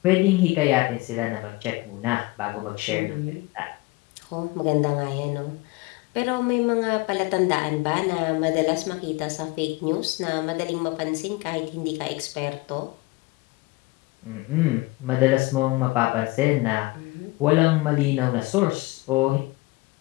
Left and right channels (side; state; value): right; quieter; 22.3 dB